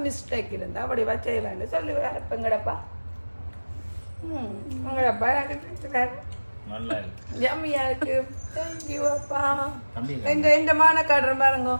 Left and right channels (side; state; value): both; inverted; correlation -1.00